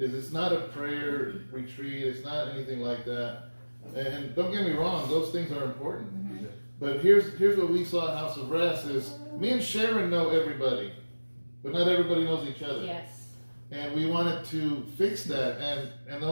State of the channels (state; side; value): inverted; both; correlation -1.00